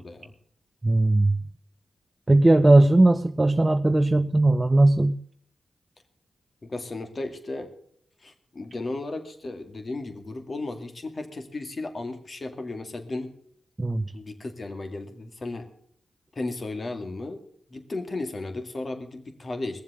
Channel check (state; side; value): normal; both; correlation 0.98